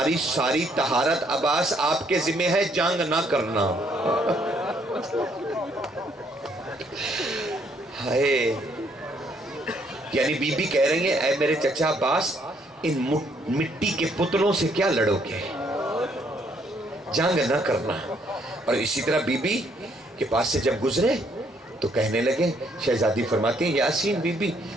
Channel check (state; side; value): normal; both; correlation 0.68